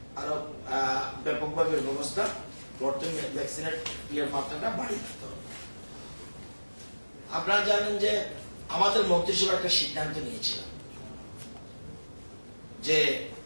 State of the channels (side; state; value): both; inverted; correlation -1.00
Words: আরো ব্যাপকভাবে ব্যবস্থা করতে, ভ্যাকসিনের মাত্রাটা বাড়িয়ে দিতে হবে। আপনারা জানেন যে আমাদের মন্ত্রিসভা একটা সিদ্ধান্ত নিয়েছিল যে